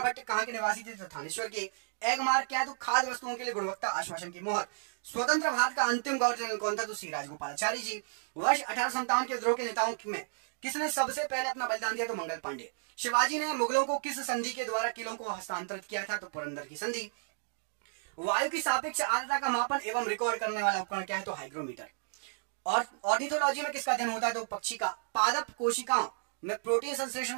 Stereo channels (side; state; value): left; silent; digital silence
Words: भट्ट कहां के निवासी थे? तो थानेश्वर के। एग मार्क क्या है? तो खाद्य वस्तुओं के लिए गुणवत्ता आश्वासन की मोहर। स्वतंत्र भारत का अंतिम गवर्नर जनरल कौन था? तो श्री राजगोपालाचारी जी। वर्ष 1857 के विद्रोह के नेताओं में किसने सबसे पहले अपना बलिदान दिया? तो मंगल पांडे। शिवाजी ने मुगलों को किस संधि के द्वारा किलों को हस्तांतरित किया था? तो पुरंदर की संधि। वायु की सापेक्ष आर्द्रता का मापन एवं रिकॉर्ड करने वाला उपकरण क्या है? तो हाइग्रोमीटर। और ऑर्निथोलॉजी में किसका अध्ययन होता है? तो पक्षी का। पादप कोशिकाओं में प्रोटीन संश्लेषण